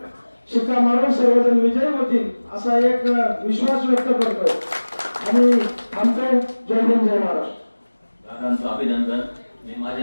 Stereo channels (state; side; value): inverted; both; correlation -1.00